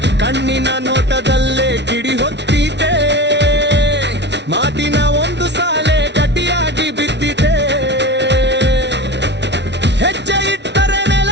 ಕಣ್ಣಿನ ನೋಟದಲ್ಲೇ ಕಿಡಿ ಹೊತ್ತಿದೆ. ಮಾತಿನ ಒಂದು ಸಾಲೆ ಗಟ್ಟಿಯಾಗಿ ಬಿದ್ದಿದೆ. ಹೆಜ್ಜೆ ಇಟ್ಟರೆ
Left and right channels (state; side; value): late; left; 0.50 ms